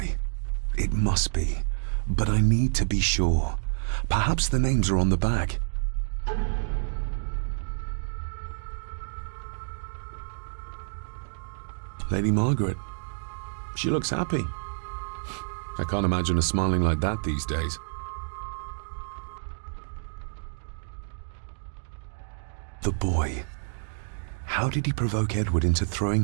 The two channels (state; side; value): silent; left; digital silence